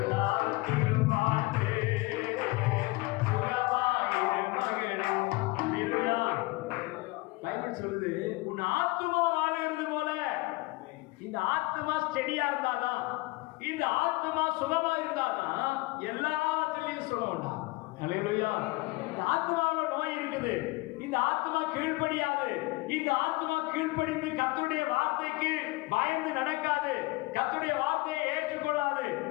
வாழ்ந்து சுகமாயிரு மகனே. பைபிள் சொல்லுது, உன் ஆத்மா வாழுகிறது போல. இந்த ஆத்மா ஸ்டெடியா இருந்தாதான், இந்த ஆத்மா சுகமா இருந்தாதான் எல்லாவற்றிலையும் சுகம் உண்டா. அல்லேலூயா. இந்த ஆத்மாவில் நோய் இருக்குது. இந்த ஆத்மா கீழ்ப்படியாது. இந்த ஆத்மா கீழ்ப்படிந்து கர்த்தருடைய வார்த்தைக்கு பயந்து நடக்காது, கர்த்தருடைய வார்த்தையை ஏற்றுக்கொள்ளாது.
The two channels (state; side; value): quieter; right; 23.1 dB